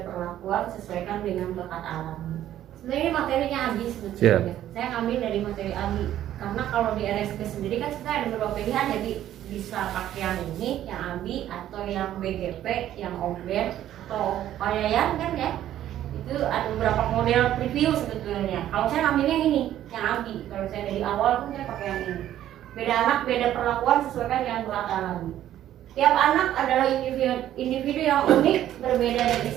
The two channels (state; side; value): quieter; left; 12.1 dB